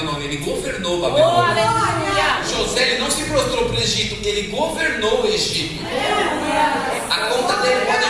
ele governou Babilônia. José, ele não se prostrou para o Egito, ele governou o Egito. A conta dele pode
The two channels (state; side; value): identical; both; correlation 1.00